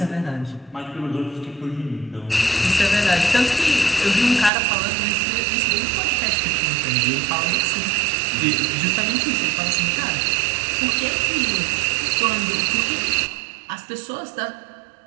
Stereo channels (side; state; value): left; drops out; at 4.5 s